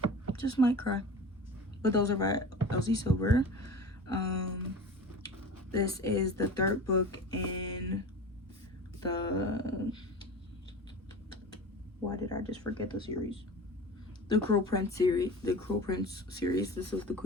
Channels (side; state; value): both; normal; correlation 0.35